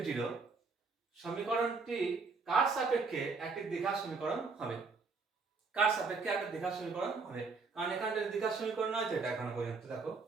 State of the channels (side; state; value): left; quieter; 4.4 dB